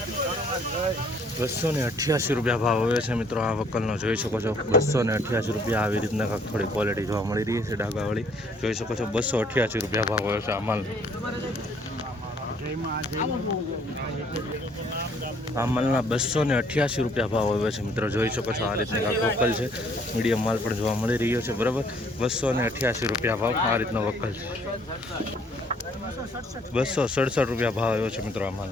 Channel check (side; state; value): both; normal; correlation 0.62